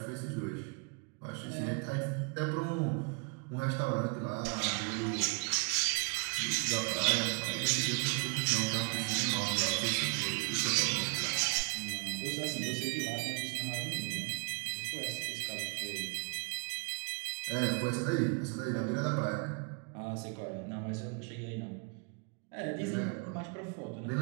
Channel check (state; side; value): quieter; left; 35.0 dB